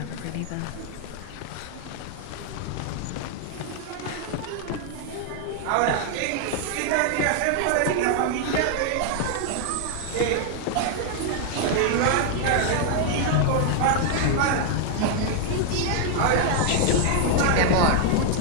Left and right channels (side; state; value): both; different; correlation 0.00